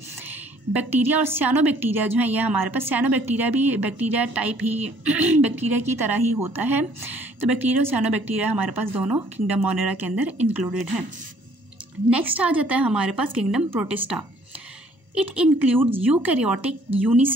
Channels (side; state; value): left; late; 1.0 ms